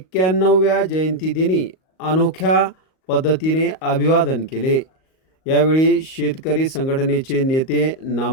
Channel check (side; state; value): right; late; 38 ms